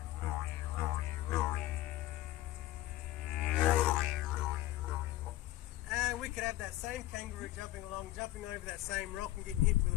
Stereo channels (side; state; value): right; quieter; 15.8 dB